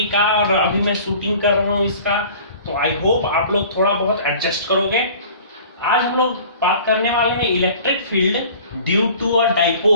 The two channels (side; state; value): both; inverted; correlation -0.46